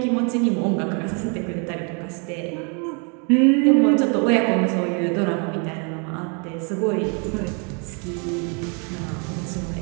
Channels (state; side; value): quieter; left; 36.2 dB